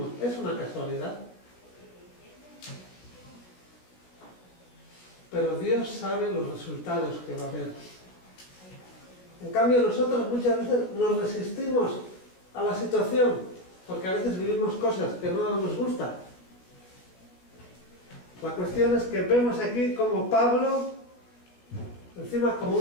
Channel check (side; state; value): right; late; 16 ms